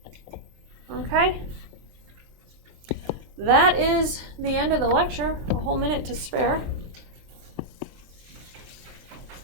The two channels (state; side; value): late; left; 23 ms